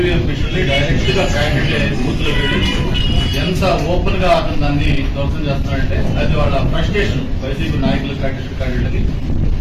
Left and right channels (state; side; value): identical; both; correlation 1.00